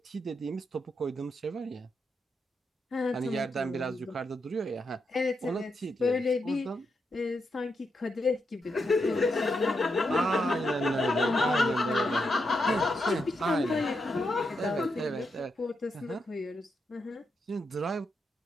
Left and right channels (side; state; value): both; normal; correlation 0.83